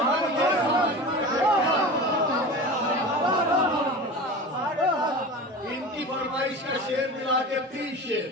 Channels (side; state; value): both; normal; correlation 0.32